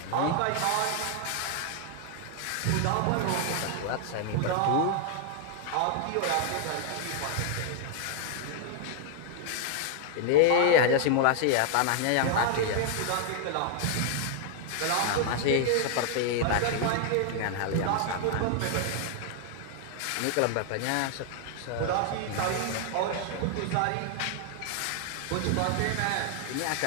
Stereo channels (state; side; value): different; both; correlation 0.00